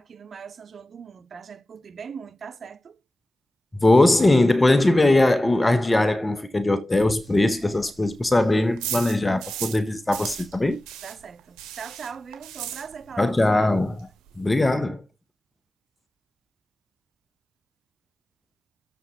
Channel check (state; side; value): normal; both; correlation 0.95